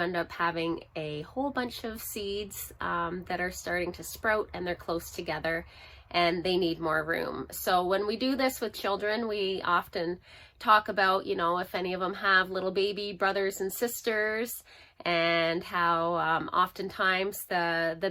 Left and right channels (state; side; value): identical; both; correlation 1.00